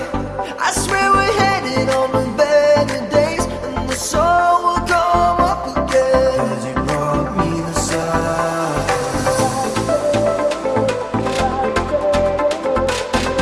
I swear we're headed on to better days, and the sun will come up again. 'Cause you brought me the sun.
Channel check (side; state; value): both; identical; correlation 1.00